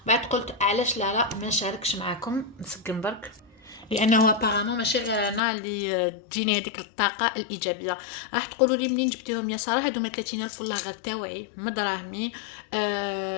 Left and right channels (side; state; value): right; drops out; at 5.4 s